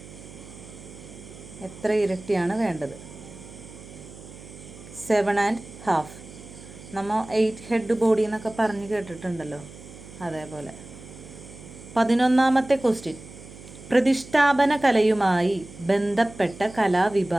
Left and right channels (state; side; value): noise; right; hum, 17 dB below the sound